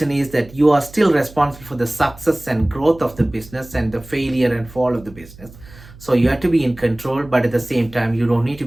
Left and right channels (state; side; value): noise; right; hum, 20 dB below the sound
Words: is that you are still responsible for the success and growth of the business and the failure and fall of the business. So you have to be in control, but at the same time you don't need to